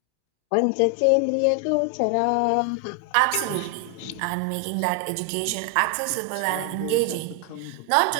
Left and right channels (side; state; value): both; different; correlation 0.00